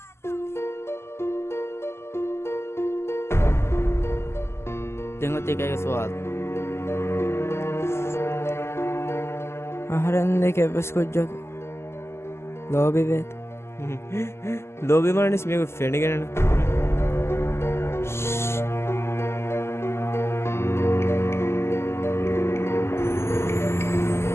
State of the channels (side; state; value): right; late; 0.12 ms